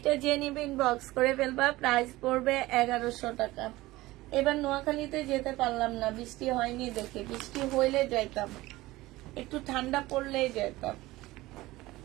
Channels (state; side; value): quieter; left; 18.6 dB